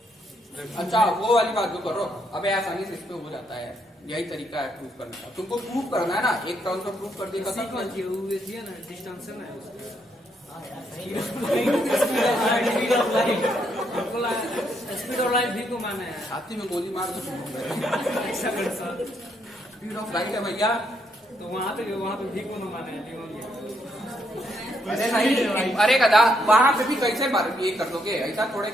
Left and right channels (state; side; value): normal; both; correlation 0.75